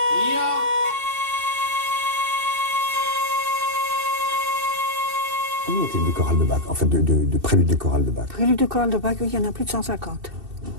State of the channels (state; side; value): late; left; 2.7 ms